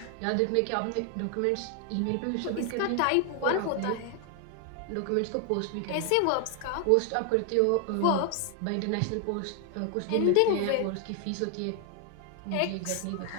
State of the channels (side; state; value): both; different; correlation 0.00